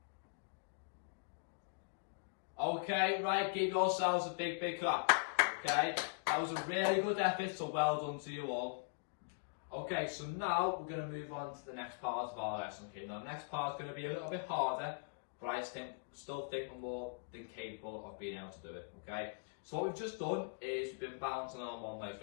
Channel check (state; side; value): silent; right; digital silence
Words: Okay, right, give yourselves a big, big clap. Okay, that was a really good effort, so well done to you all. Okay, so now we're going to move on to the next part of our lesson. Okay, now the next part is going to be a little bit harder, but I still think we're more than capable of being able to do it. Okay, so what we've just done is we've been balancing on one leg. We've